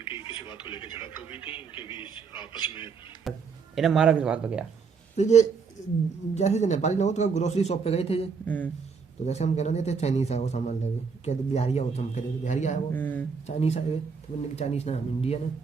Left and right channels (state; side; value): quieter; left; 5.4 dB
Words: किसी बात को लेकर झड़प हो गई थी इनके बीच आपस में। इन्हें मारा किस बात पे गया? तो ये जैसे जो नेपाली लोग तो ग्रोसरी शॉप पे गए थे ये, हम्म। तो जैसे हम कहना नहीं थे चाइनीज है वो सामान लगे, कहते बिहारी हो, तो हम कहते बिहारी आया वो, चाइनीज आए, तो मैंने कहा चाइनीज ना हम इंडियन है,